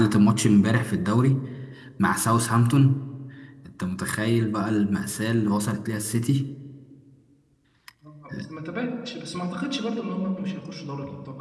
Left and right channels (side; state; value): both; identical; correlation 1.00